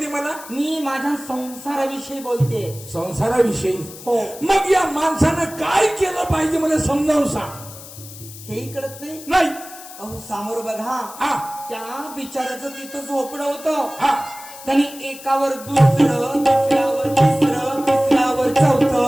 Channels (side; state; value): left; noise; hiss, 16 dB below the sound